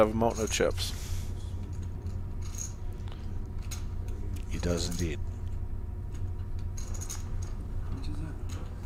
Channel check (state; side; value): identical; both; correlation 1.00